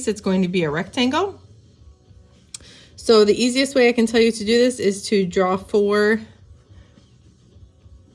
it's going to be a rectangle. So the easiest way I can tell you to do this is to draw 4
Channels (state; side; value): identical; both; correlation 1.00